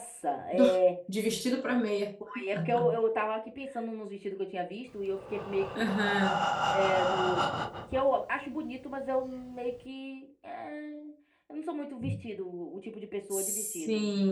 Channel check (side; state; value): both; identical; correlation 1.00